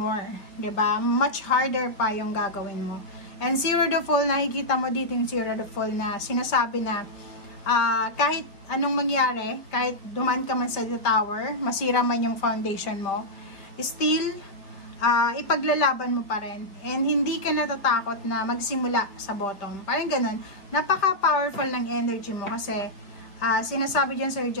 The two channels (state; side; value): late; right; 5.1 ms